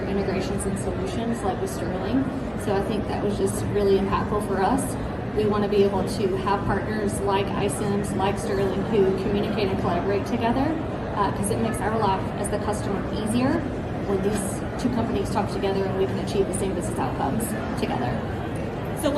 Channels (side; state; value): both; identical; correlation 1.00